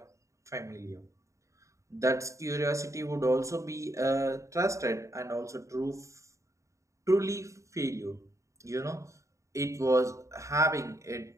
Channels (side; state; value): left; late; 0.15 ms